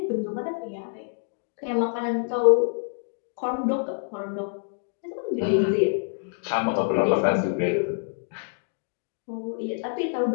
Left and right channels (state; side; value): silent; right; digital silence